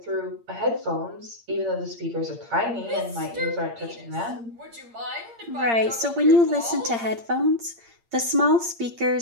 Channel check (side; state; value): left; late; 8.7 ms